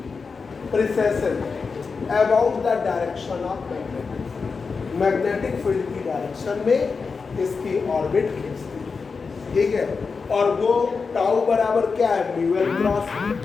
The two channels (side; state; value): right; quieter; 4.9 dB